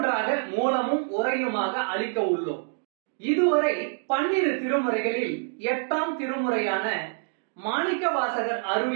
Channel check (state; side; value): silent; left; digital silence